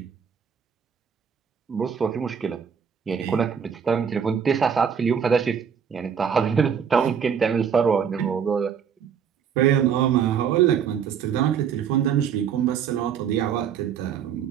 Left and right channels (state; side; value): quieter; left; 7.5 dB